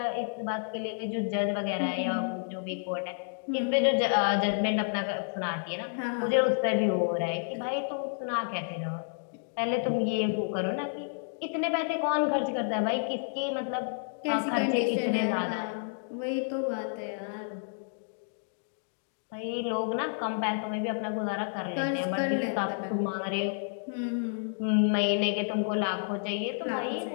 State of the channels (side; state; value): right; silent; digital silence